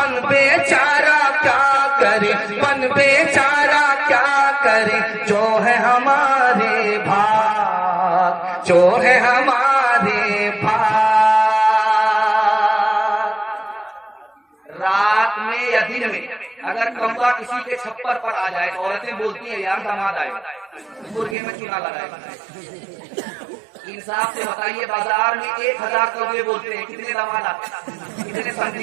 بیچارہ کیا کرے, بن بیچارہ کیا کرے, جو ہے ہمارے بھاگ, جو ہے ہمارے بھاگ. رات میں یا دن میں اگر کمبا کسی کے چھپر پر آ جائے, عورتیں بولتی ہیں یار داماد آئے, مرغے میں چونا لگائے. انصاف سے بتائیے, بازار میں 1000 کوے بولتے ہیں, کتنے داماد آتے ہیں, کتنے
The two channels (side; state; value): left; drops out; at 21.4 s